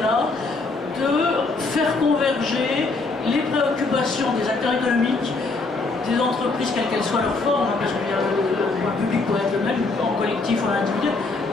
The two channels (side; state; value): right; quieter; 3.7 dB